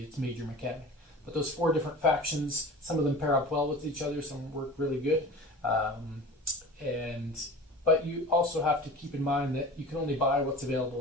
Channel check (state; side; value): normal; both; correlation 0.37